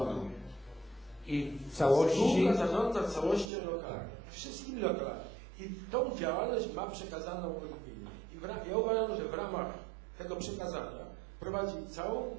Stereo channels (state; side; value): drops out; left; at 3.5 s